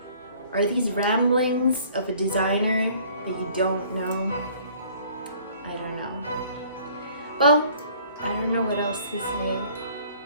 Are these ramblings of a designer that you don't know? I don't know. Well, I don't know what else to say,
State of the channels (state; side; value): inverted; both; correlation -0.55